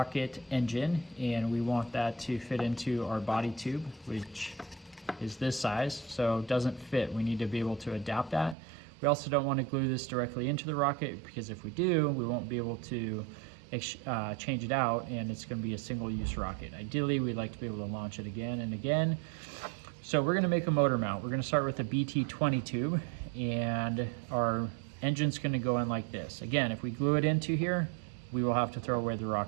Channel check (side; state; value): left; drops out; at 8.6 s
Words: engine, and we want that to fit into our body tube, which is this size, so it doesn't fit. We need to be able to adapt that. We also don't want to glue this directly into the rocket, because if we do, we won't be able to change it out, and it's going to be a single-use rocket. Ideally, we'd like to be able to launch it again and again. So we're going to make a motor mount. We're going to start with a BT20 tube, and our engine's going to go in like this. Again, if we glue it into here, we will have to throw away the